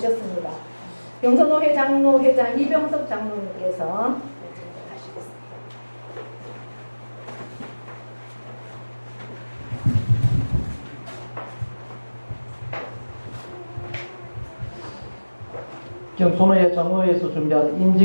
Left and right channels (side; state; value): both; inverted; correlation -1.00